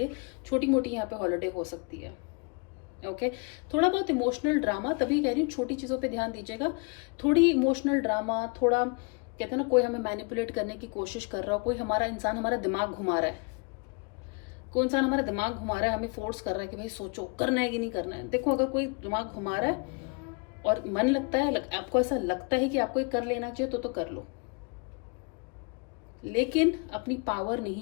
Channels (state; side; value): quieter; right; 33.7 dB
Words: छोटी मोटी यहाँ पे हॉलीडे हो सकती है। ओके थोड़ा बहुत इमोशनल ड्रामा, तभी कह रही हूँ छोटी चीज़ों पे ध्यान दीजिएगा। थोड़ी इमोशनल ड्रामा, थोड़ा कहते हैं ना कोई हमें मैनिपुलेट करने की कोशिश कर रहा हो, कोई हमारा इंसान हमारा दिमाग घुमा रहा है, कोई इंसान हमारा दिमाग घुमा रहा है, हमें फोर्स कर रहा है कि भाई सोचो करना है कि नहीं करना है। देखो अगर कोई दिमाग घुमा रहा है और मन लगता है, आपको ऐसा लगता है कि आपको ये कर लेना चाहिए तो कर लो, लेकिन अपनी पावर